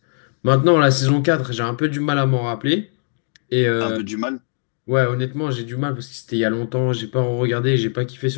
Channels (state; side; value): silent; right; 66 dB below the other